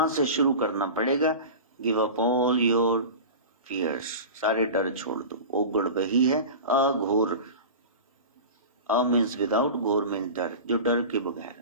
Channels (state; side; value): inverted; both; correlation -0.32